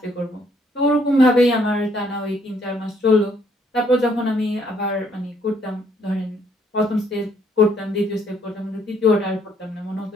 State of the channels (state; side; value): normal; both; correlation 0.68